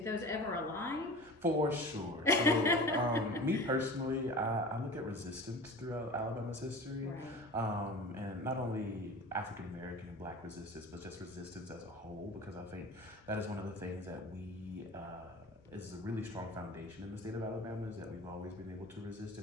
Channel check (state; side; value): normal; both; correlation 0.36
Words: those ever align? For sure. So, me personally, I look at resistance throughout Alabama's history, Right. and not only African American and Black resistance, but just resistance as a whole, because I think that is one of the things that is a really strong foundation in the state of Alabama, is that we've always been able to resist in